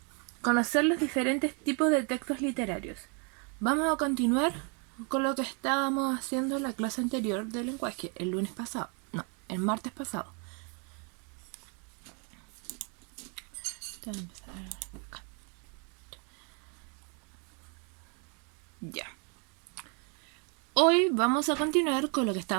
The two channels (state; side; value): quieter; left; 36.4 dB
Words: conocer los diferentes tipos de textos literarios. Vamos a continuar con lo que estábamos haciendo en la clase anterior de lenguaje, el lunes pasado. No, el martes pasado. Ya. Hoy vamos a continuar con lo que